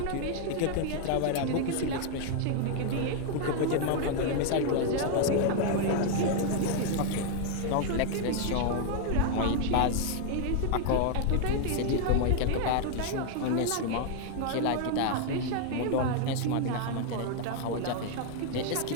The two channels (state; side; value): different; both; correlation 0.00